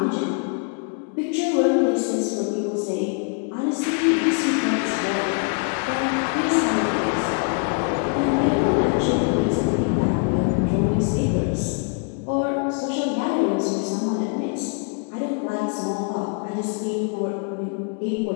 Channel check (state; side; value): quieter; right; 39.0 dB